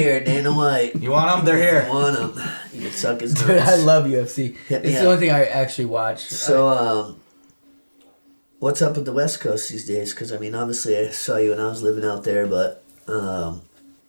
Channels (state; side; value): inverted; both; correlation -1.00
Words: Dana White. You want them? They're If here. you want him, you can suck his nuts. Dude, I love UFC. Hit me It's up. the only thing I actually watch. So, what's up with the West Coast these days? Because, I mean, obviously I saw you when I was living out there, but,